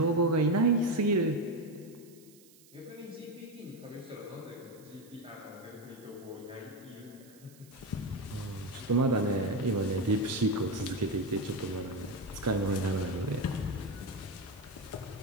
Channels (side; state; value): right; noise; hiss, 25 dB below the sound